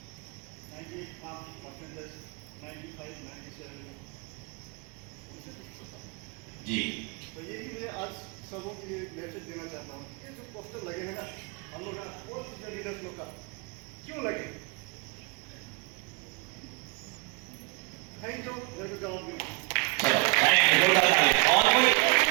98% 95 97 जी, तो ये भी मैं आज सबों के लिए मैसेज देना चाहता हूँ। ये जो पोस्टर लगे हैं ना हम लोग का लीडर्स लोग का क्यों लगे? थैंक यू, मेरे को जवाब देना। चलो, थैंक यू, जोरदार ताली। और कोई?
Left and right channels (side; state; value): left; quieter; 29.7 dB